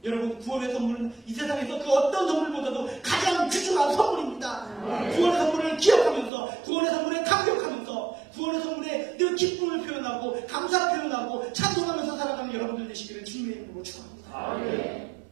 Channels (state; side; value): drops out; left; at 6.3 s